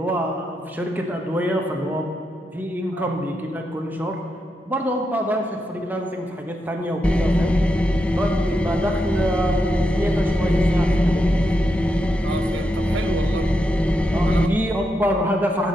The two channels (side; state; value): both; normal; correlation 0.84